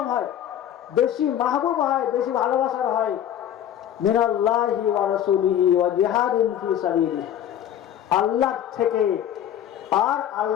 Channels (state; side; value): quieter; right; 10.6 dB